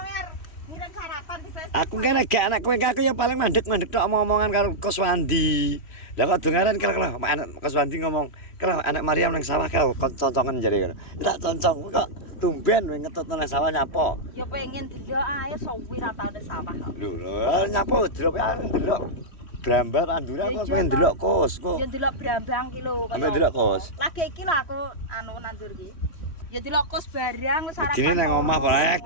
ngirim sarapan di Facebook. Aku kene gak anak kowe aku ya paling mandek-mandek tok omongan karo Koswandi. Lah kok dongaran kira-kira anak Koswandi ngomong, "Kira anak Mariam nang sawah kau concongan jare ngono." Tak concong kok tumben kowe ngetut nang sawah nyapa. Ya pengen delok ae suwi ra tau nang sawah kok. Lho, nyapa delok ae delok Brambar andure aku pengen delok kos kok. Ya delok Brambang ki lho Sampe delok kos. Lagi iki lho aku nandur ki. Ya delok kos barang wis sarapan. Dene nang omah ora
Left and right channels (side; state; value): right; late; 3.1 ms